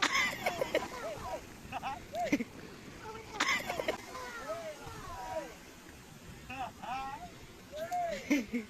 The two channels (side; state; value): both; identical; correlation 1.00